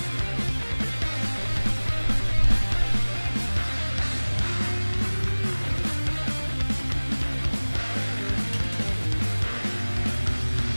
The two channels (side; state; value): both; inverted; correlation -1.00